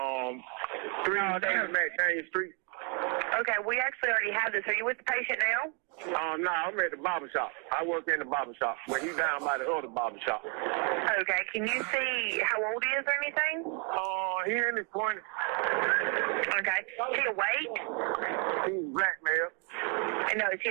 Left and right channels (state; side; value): quieter; left; 36.7 dB